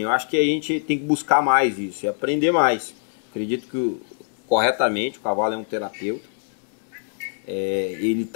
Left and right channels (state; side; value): silent; right; 63 dB below the other